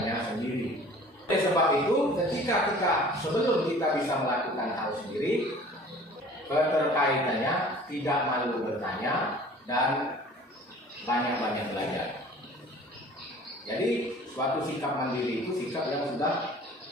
sendiri. Oleh sebab itu, ketika sebelum kita bisa melakukan hal sendiri, keterkaitannya tidak malu bertanya dan banyak-banyak belajar. Jadi suatu sikap mandiri itu sikap yang sudah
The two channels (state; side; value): normal; both; correlation 0.47